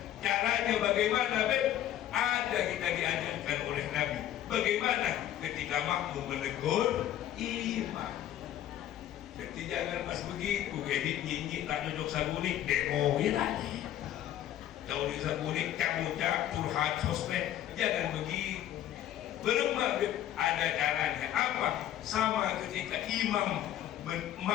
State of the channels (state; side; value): quieter; right; 11.9 dB